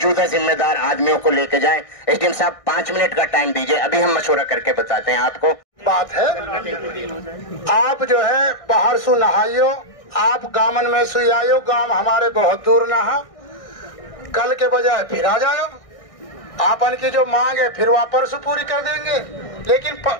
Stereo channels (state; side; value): late; right; 1.6 ms